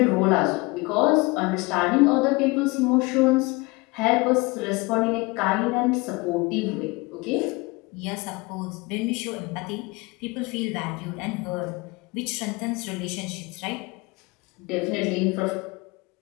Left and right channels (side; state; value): right; quieter; 25.3 dB